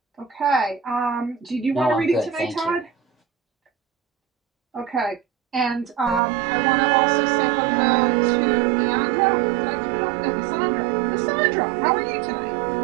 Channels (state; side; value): drops out; left; at 6.2 s